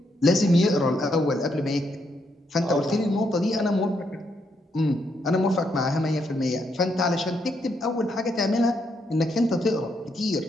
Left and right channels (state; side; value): normal; both; correlation 0.77